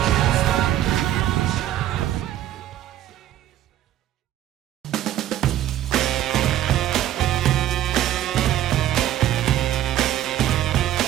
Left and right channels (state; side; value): quieter; left; 12.6 dB